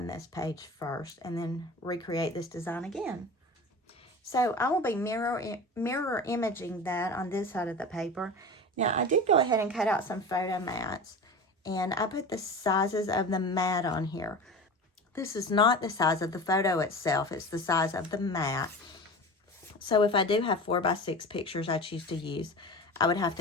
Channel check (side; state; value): both; normal; correlation 0.33